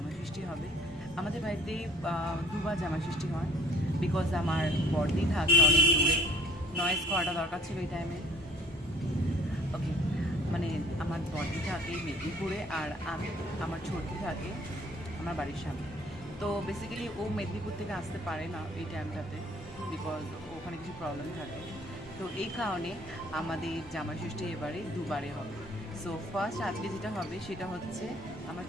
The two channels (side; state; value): both; normal; correlation 0.55